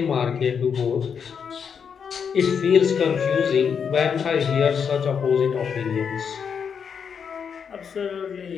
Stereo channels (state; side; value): quieter; right; 6.9 dB